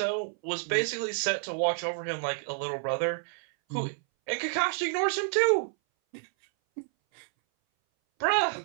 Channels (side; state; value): left; silent; 58 dB below the other